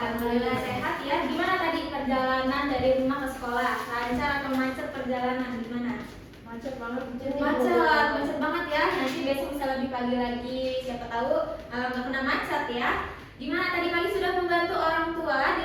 sehat ya. Gimana tadi perjalanan dari rumah ke sekolah? Lancar atau macet perjalanan? Gimana? Macet banget. Macet banget ya. Nanti besok bisa lebih pagi lagi. Siapa tahu nggak kena macet ya. Gimana tadi pagi sudah membantu orang tua di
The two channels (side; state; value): both; identical; correlation 1.00